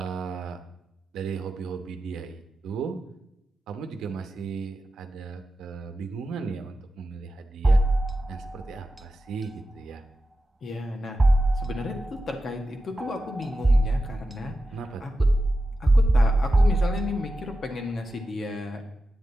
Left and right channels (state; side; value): normal; both; correlation 0.91